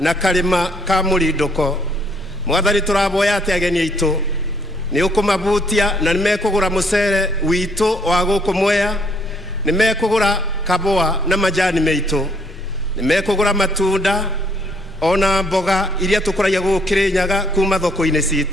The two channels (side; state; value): both; normal; correlation 0.67